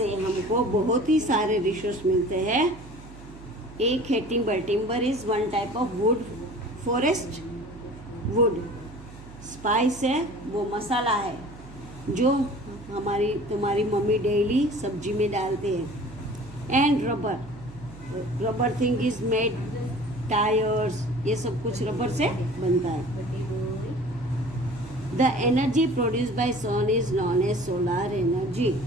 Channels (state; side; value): noise; right; hum, 17 dB below the sound